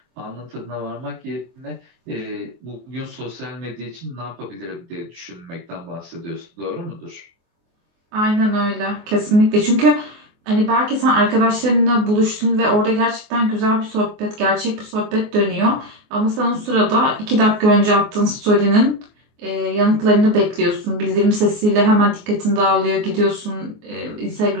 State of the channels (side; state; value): left; late; 24 ms